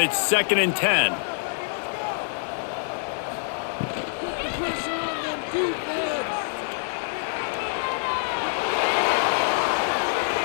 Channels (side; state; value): right; silent; 61 dB below the other